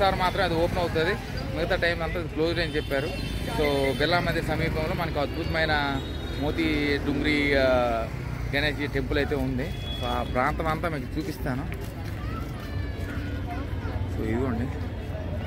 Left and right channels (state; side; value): identical; both; correlation 1.00